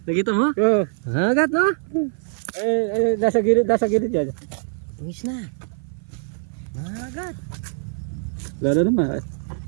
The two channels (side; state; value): left; silent; 56 dB below the other